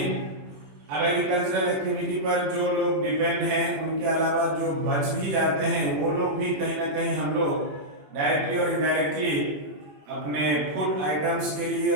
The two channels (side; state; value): left; late; 21 ms